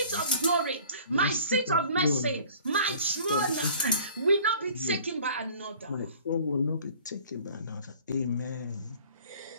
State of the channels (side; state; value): both; inverted; correlation -0.49